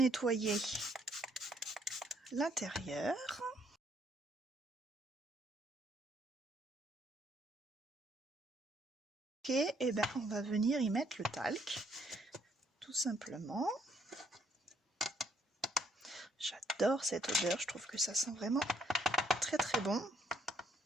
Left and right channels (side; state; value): both; normal; correlation 0.68